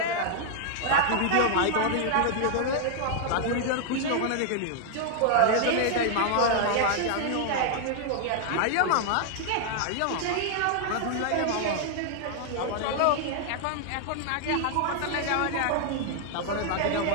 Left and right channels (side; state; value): both; different; correlation 0.00